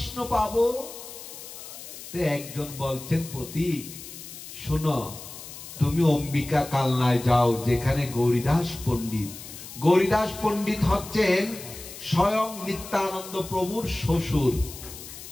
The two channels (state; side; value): noise; left; hiss, 13 dB below the sound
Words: পাবো। একজন বলছেন, পথিক শোনো, তুমি অম্বিকা কালনায় যাও, যেখানে গৌরীদাস পণ্ডিত। গৌরীদাস পণ্ডিত হচ্ছেন স্বয়ং নিত্যানন্দ প্রভুর শ্বশুর।